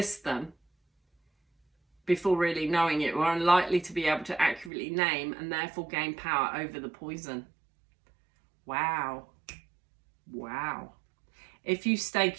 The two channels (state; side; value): drops out; left; at 4.7 s